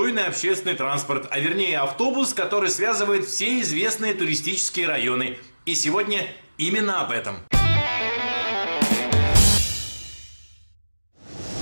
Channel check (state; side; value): inverted; both; correlation -1.00